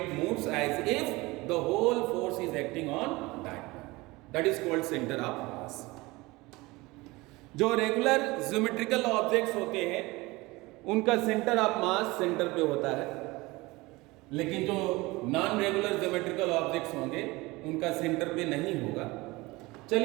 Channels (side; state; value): left; quieter; 22.0 dB